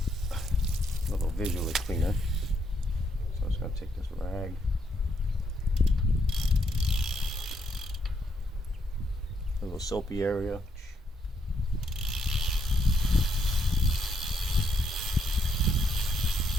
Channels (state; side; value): normal; both; correlation 0.75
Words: little visually cleaner. So I'm just going to take this rag. A little soapy area.